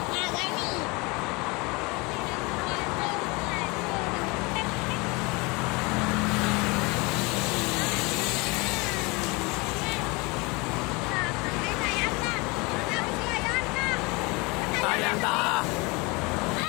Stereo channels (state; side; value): quieter; right; 26.6 dB